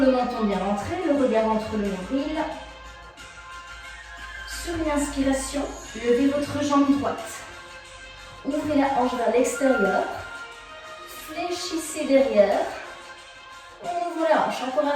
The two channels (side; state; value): both; identical; correlation 1.00